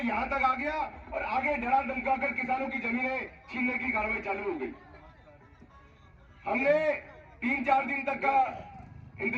तक आ गया, और आगे डरा धमकाकर किसानों की जमीनें छीनने की कार्रवाई चालू हो गई। हमने 3-4 दिन तक का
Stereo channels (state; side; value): identical; both; correlation 1.00